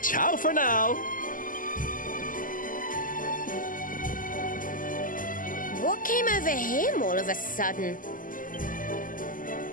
Ciao for now! What came over him all of a sudden?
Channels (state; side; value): late; right; 0.39 ms